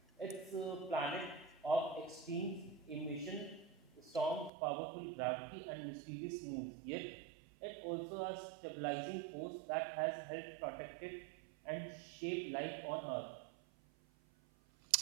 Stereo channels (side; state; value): left; drops out; at 4.5 s